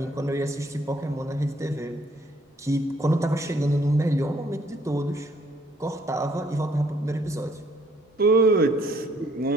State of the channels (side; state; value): both; normal; correlation 0.64